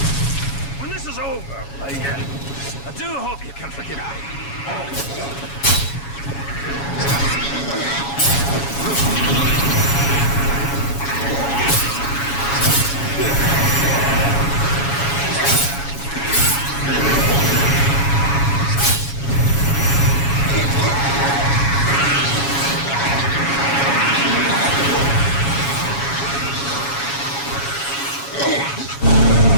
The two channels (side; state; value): right; late; 7.2 ms